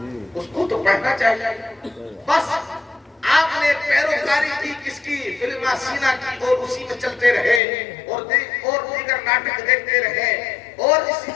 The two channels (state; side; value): drops out; right; at 7.6 s